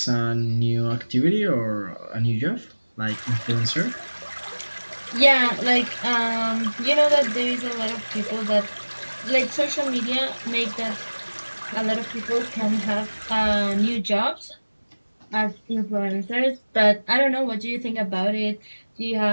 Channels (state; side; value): inverted; both; correlation -1.00